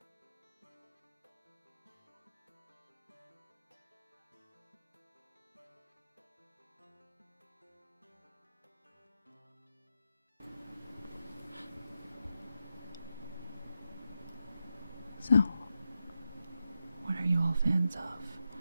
So, what are you all fans of?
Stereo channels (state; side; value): inverted; both; correlation -0.87